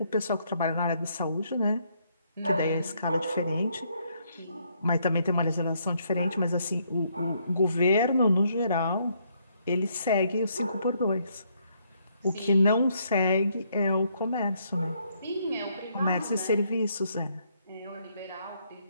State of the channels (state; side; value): inverted; both; correlation -0.71